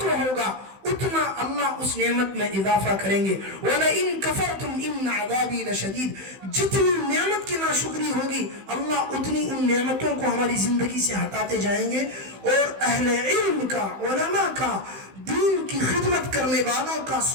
ہوگا اتنا اللہ اس نعمت میں اضافہ کریں گے۔ وَلَئِن كَفَرْتُمْ إِنَّ عَذَابِي لَشَدِيدٌ، جتنی نعمت کی ناشکری ہوگی اللہ اتنی ان نعمتوں کو ہماری زندگی سے ہٹاتے جائیں گے۔ اور اہل علم کا، علماء کا، دین کی خدمت کرنے والوں کا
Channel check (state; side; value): late; left; 16 ms